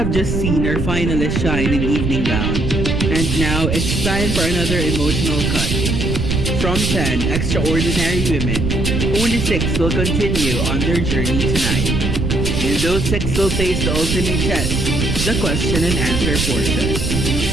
just seen our finalists shine in evening gown, and now it's time for another emotional cut. From 10 extraordinary women, only 6 will continue on their journey tonight. And those 6 will face the ultimate test, the question and answer portion.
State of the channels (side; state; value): right; noise; rumble, 1 dB below the sound